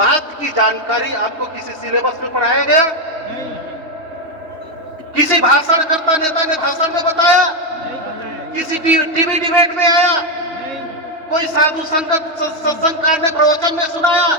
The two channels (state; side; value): late; left; 3.2 ms